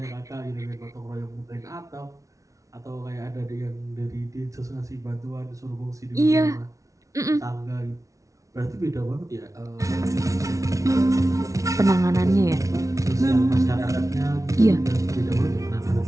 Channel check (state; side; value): late; left; 0.16 ms